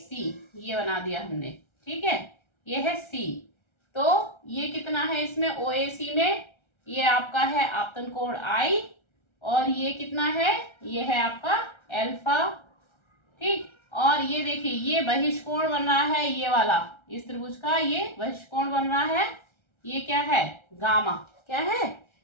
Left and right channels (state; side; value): late; right; 1.3 ms